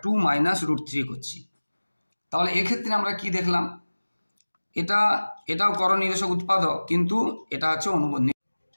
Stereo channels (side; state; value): both; inverted; correlation -1.00